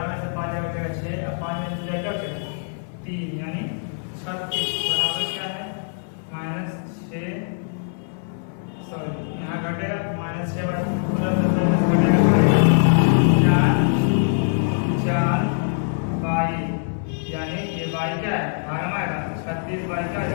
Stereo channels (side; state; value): right; silent; 63 dB below the other